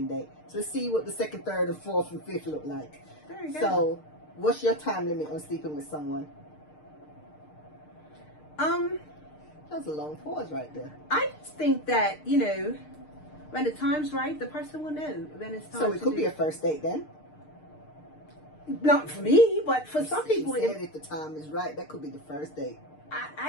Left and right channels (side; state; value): right; late; 6.6 ms